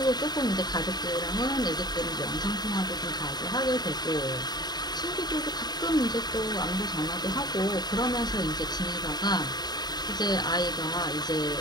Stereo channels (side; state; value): right; late; 0.20 ms